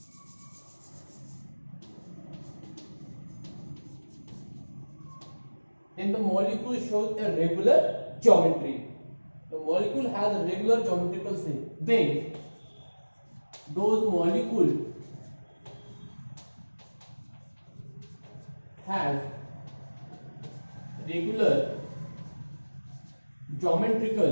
then the molecule shows a regular geometry. The molecule has a regular geometrical shape. Then those molecules have regular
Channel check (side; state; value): both; inverted; correlation -1.00